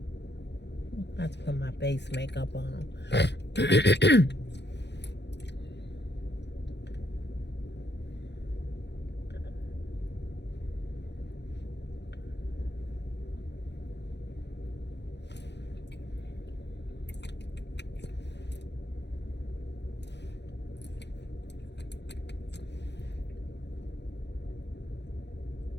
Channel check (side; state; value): right; late; 0.50 ms